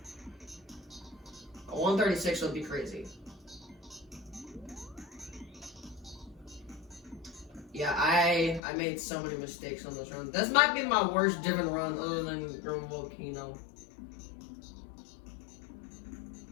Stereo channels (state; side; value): drops out; right; at 8.6 s